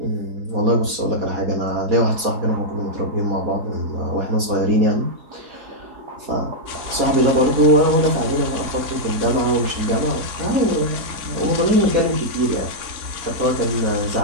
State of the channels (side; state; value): left; late; 4.2 ms